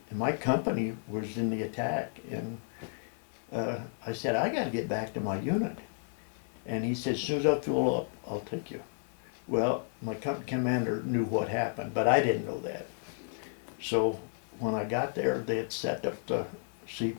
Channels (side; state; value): right; silent; 56 dB below the other